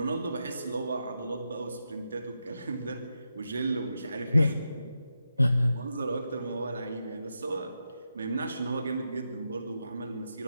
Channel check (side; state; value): both; inverted; correlation -0.86